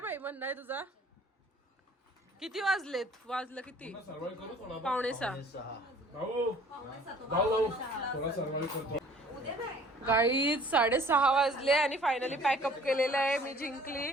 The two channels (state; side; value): normal; both; correlation 0.53